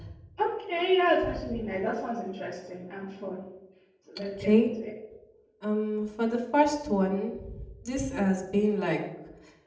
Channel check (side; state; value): both; identical; correlation 1.00